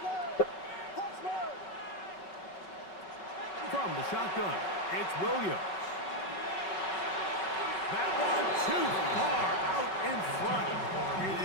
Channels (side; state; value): right; late; 5.3 ms